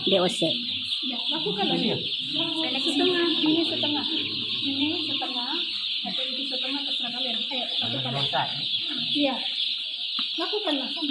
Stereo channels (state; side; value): identical; both; correlation 1.00